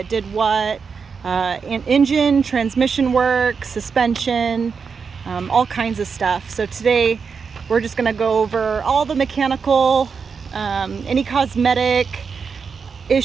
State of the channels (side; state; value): left; quieter; 5.7 dB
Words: did what, engine, transmission work, suspension, all kinds of stuff. So today we're just going to go over all the mechanical, any cosmetic